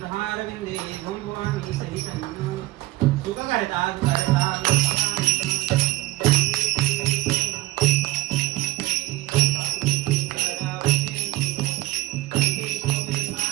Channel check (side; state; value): left; quieter; 17.9 dB